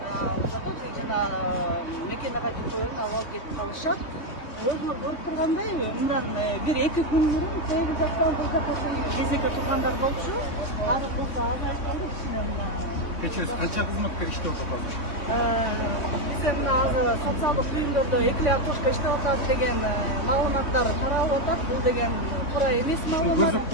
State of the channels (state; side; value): late; right; 3.5 ms